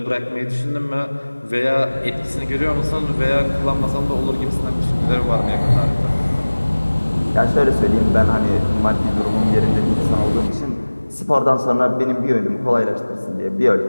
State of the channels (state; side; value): inverted; both; correlation -1.00